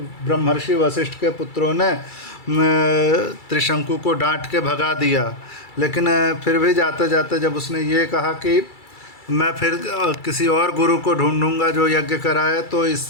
ब्रह्मर्षि वशिष्ठ के पुत्रों ने त्रिशंकु को डांट के भगा दिया। लेकिन फिर भी जाते जाते जब उसने ये कहा कि मैं फिर किसी और गुरु को ढूंढूंगा जो यज्ञ कराए, तो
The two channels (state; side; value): late; right; 2.3 ms